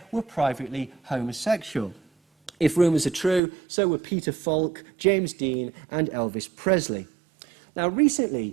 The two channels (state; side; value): drops out; left; at 3.4 s